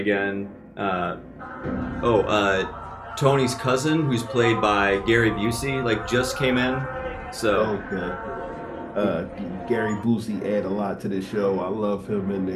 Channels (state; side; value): identical; both; correlation 1.00